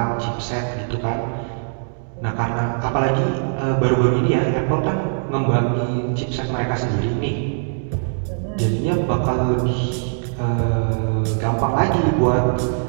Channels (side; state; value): left; silent; digital silence